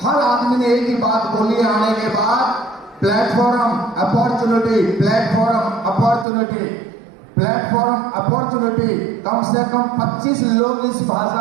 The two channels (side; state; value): left; drops out; at 6.2 s